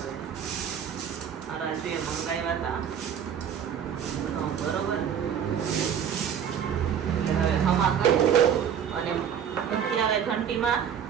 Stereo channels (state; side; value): quieter; left; 8.4 dB